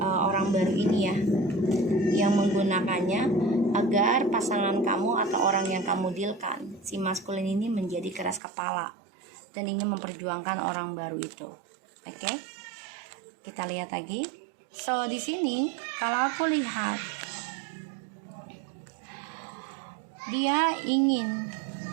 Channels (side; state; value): left; drops out; at 8.4 s